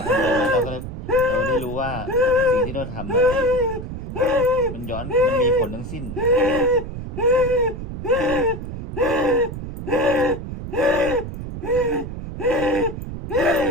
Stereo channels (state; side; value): noise; right; rumble, 8 dB below the sound